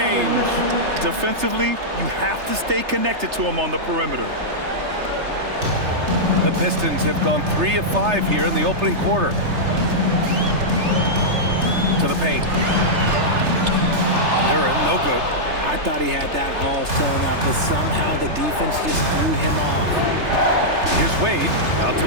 Defensively, you have to stay connected to him on the perimeter. The Pistons have gone 3 of 5 here in the opening quarter. To the paint. Duren, no good. I thought he had that all sewn up, but somehow the defense just threw him off. Here's Wade. Out to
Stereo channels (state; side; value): late; left; 3.3 ms